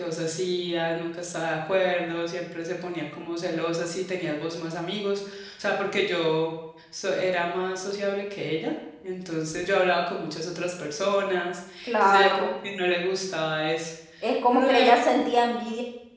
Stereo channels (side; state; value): both; identical; correlation 1.00